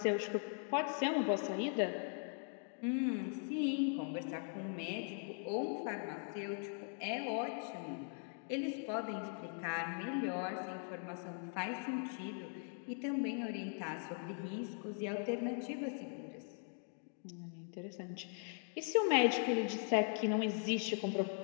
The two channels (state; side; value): silent; right; 51 dB below the other